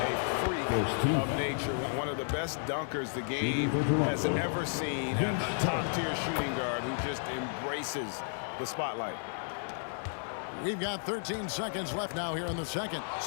freak of nature. One of the best dunkers the game has ever seen. A top-tier shooting guard who just embraces the spotlight. We've got 13 seconds left now here in the second.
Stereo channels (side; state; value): right; silent; 56 dB below the other